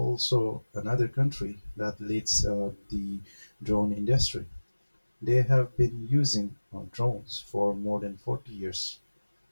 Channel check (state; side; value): inverted; both; correlation -1.00